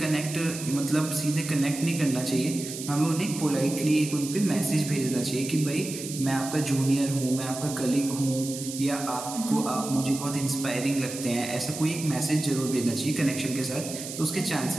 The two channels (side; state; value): right; noise; hiss, 9 dB below the sound